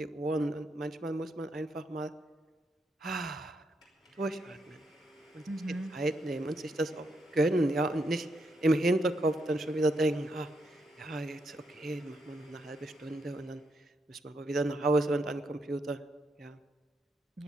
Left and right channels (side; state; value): both; normal; correlation 0.79